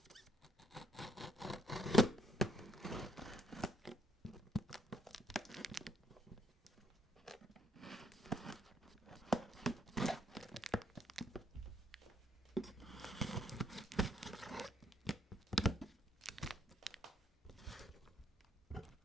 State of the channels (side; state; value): both; normal; correlation 0.68